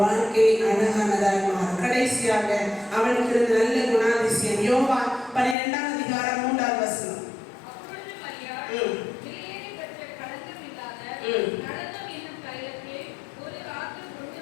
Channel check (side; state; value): right; drops out; at 5.6 s